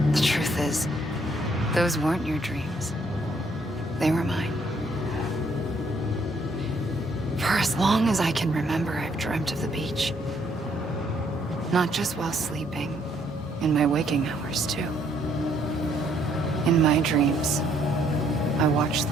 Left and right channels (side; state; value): both; normal; correlation 0.68